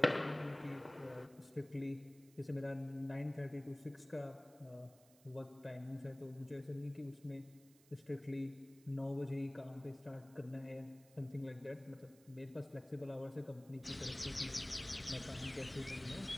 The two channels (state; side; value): noise; right; hiss, 25 dB below the sound